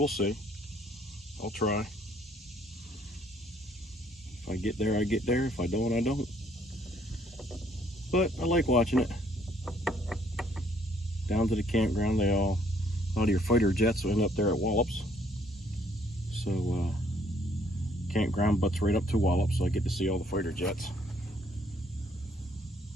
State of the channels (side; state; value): both; normal; correlation 0.65